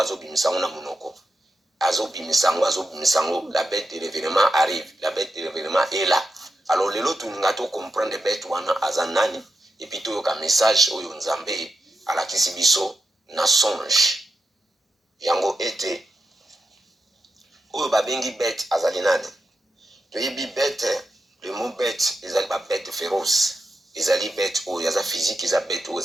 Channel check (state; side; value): normal; both; correlation 0.88